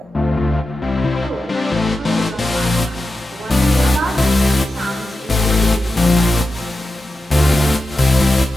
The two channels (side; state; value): both; normal; correlation 0.91